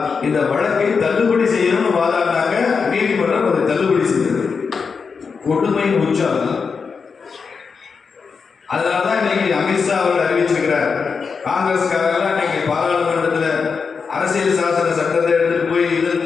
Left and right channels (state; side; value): quieter; right; 5.4 dB